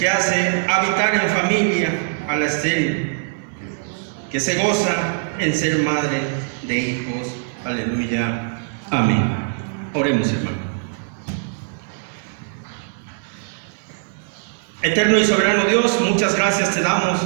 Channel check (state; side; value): silent; left; digital silence